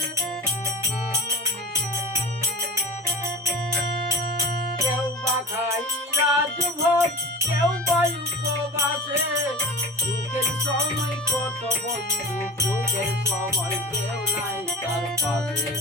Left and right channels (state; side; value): normal; both; correlation 0.33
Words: খাই রাজভোগ কেউ বায়ু উপবাসে, সুখের সময় কত বন্ধু সুখের সময় কেউ নাই তার পাশে